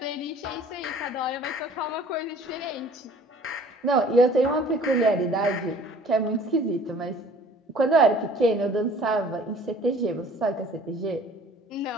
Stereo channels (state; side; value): normal; both; correlation 0.51